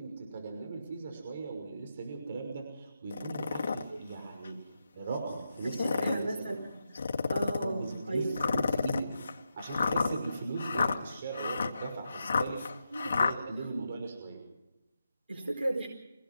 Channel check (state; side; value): inverted; both; correlation -0.86